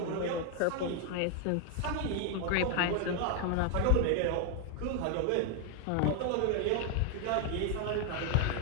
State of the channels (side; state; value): both; different; correlation 0.00